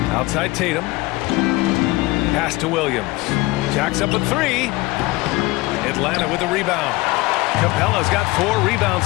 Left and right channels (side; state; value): right; quieter; 21.2 dB